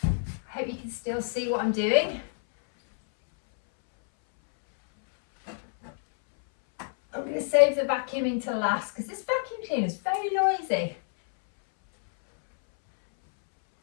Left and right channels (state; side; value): silent; right; 60 dB below the other